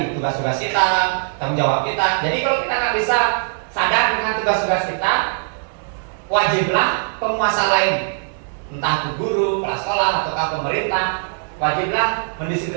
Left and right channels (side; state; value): left; silent; digital silence